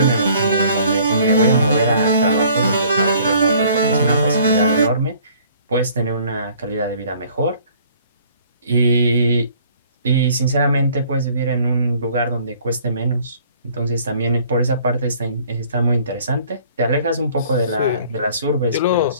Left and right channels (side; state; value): both; inverted; correlation -0.56